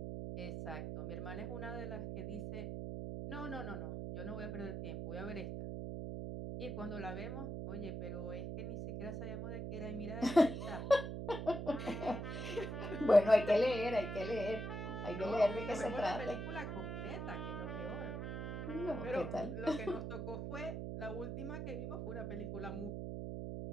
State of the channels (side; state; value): right; noise; hum, 4 dB below the sound